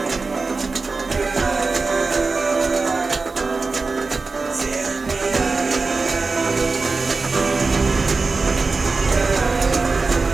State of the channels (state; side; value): quieter; left; 4.0 dB